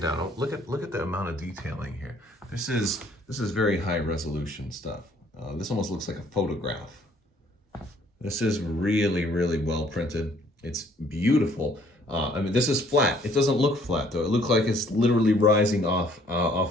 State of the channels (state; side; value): normal; both; correlation 0.61